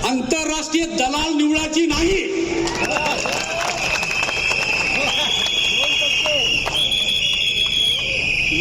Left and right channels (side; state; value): both; identical; correlation 1.00